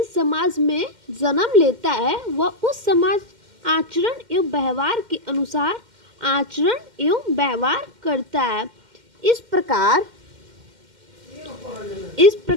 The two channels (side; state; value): left; late; 2.1 ms